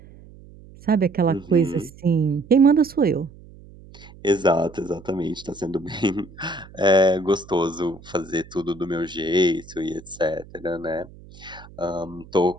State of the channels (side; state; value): right; noise; hum, 21 dB below the sound